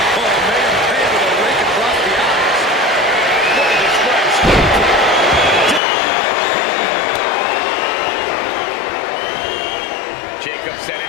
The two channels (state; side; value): drops out; right; at 5.8 s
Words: Oh, made him pay with a rake across the eyes. What a disgrace. Jacob